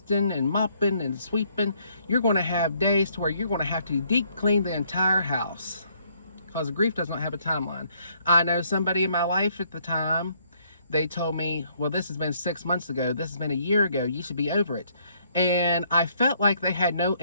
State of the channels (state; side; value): inverted; both; correlation -0.67